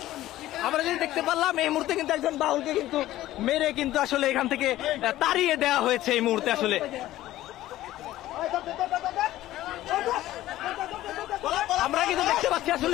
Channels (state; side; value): quieter; right; 15.0 dB